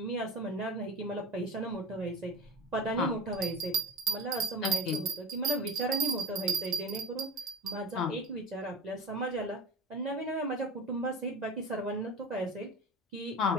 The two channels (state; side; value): normal; both; correlation 0.33